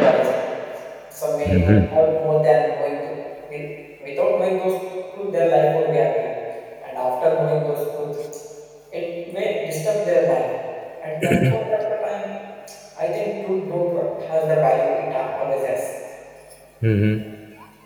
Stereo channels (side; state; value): both; identical; correlation 1.00